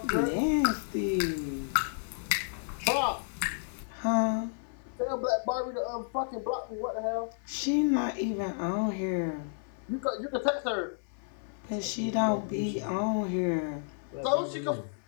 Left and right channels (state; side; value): silent; right; 57 dB below the other